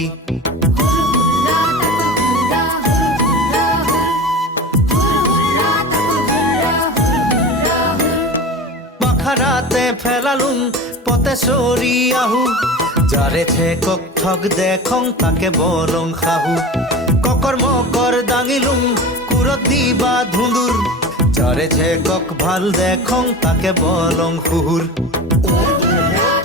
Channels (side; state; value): both; normal; correlation 0.32